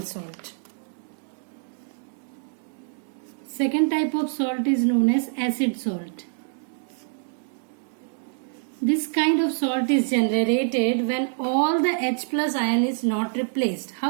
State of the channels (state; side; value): silent; left; digital silence